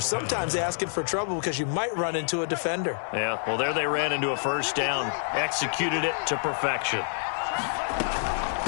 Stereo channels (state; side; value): silent; right; 60 dB below the other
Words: sometimes asking for trouble because you might run into a defender. Yeah, well, there they ran into a first down. Executed it to perfection.